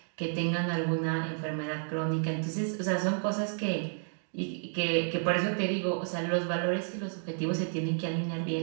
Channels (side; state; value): left; silent; 57 dB below the other